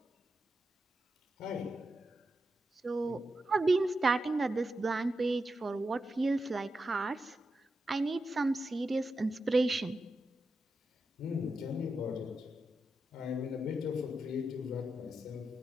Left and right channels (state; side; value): normal; both; correlation 0.88